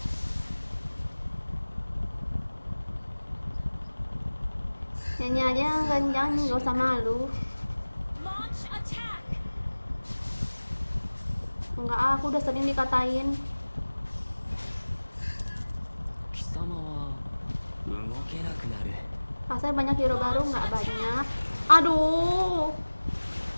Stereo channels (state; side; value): inverted; both; correlation -1.00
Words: Nyanyi aja yang kencang, nggak usah malu. Launch attack. Enggak, aku udah sering dikatain. 貴様は動けなくなる Kasar banyak hero baru nggak banyak. Aduh.